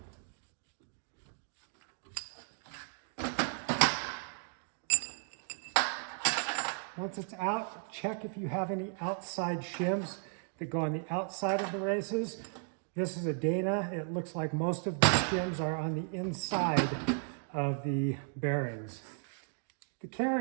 Once it's out, check if you have any outside shims that go on the outside of the races. This is a Dana. It looks like most of the shims are on the inside of the bearings. The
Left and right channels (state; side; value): silent; left; 54 dB below the other